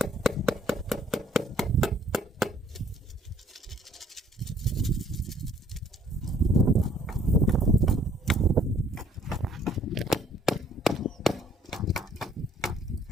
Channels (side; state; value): both; normal; correlation 0.62